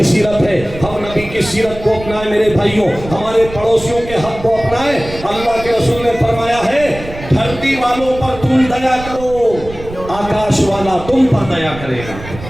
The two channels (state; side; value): noise; right; rumble, 13 dB below the sound